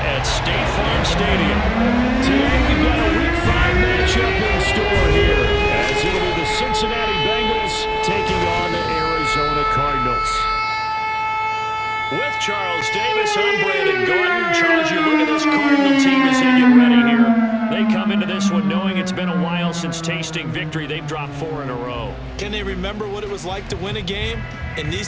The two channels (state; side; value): identical; both; correlation 1.00